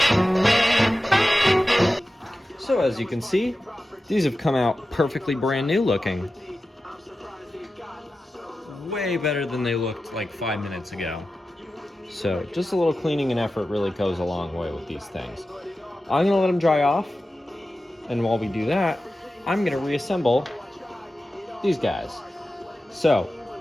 So as you can see, these have come out perfectly brand new looking. Way better than they looked like 5 minutes ago. So just a little cleaning and effort really goes a long way with these things. I'm gonna let them dry off, and while we do that, I'm gonna reassemble these guys. So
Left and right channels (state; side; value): normal; both; correlation 0.93